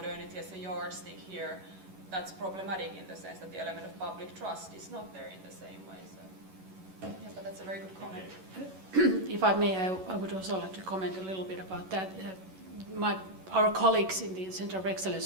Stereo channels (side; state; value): left; late; 11 ms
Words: as a yardstick here, that's problematic in the sense that the element of public trust is not there in the same way. So, yeah, but that's a very good comment. If I may, I would also like to comment a little bit about that. Our colleagues in the Center of